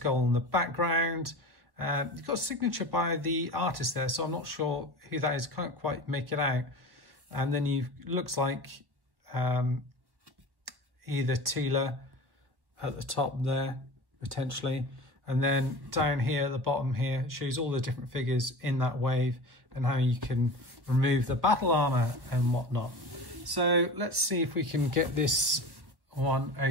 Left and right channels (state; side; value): late; left; 1.3 ms